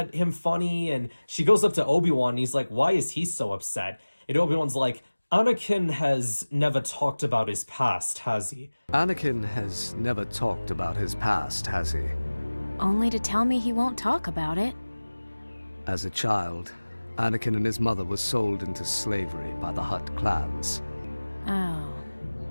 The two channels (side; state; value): both; inverted; correlation -1.00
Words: him funny, and she goes up to Obi-Wan, and he's like, why is he so upset? And Obi-Wan's like, Anakin has never talked about his past, has he? Anakin has never talked about his past, has he? Only to tell me he won't talk about it. As a child, Anakin and his mother were sold into slavery by the Hutt clans. Oh.